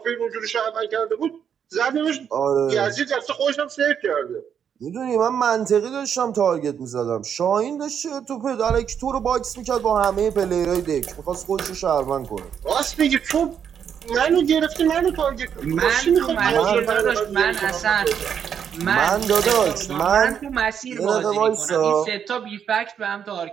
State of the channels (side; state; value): left; quieter; 8.1 dB